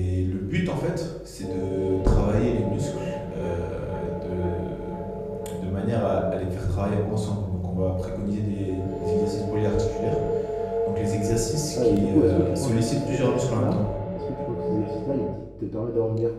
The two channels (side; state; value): both; identical; correlation 1.00